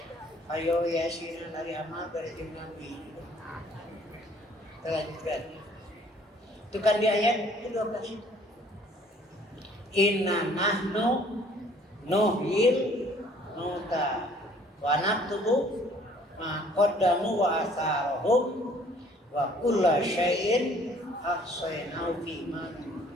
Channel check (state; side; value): normal; both; correlation 0.57